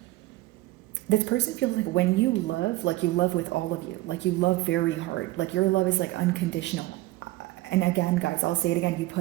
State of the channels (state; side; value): quieter; left; 18.0 dB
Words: this person feels like when you love, like you love with all of you, like you love very hard, like your love is like unconditional. And again, guys, I'll say it again, you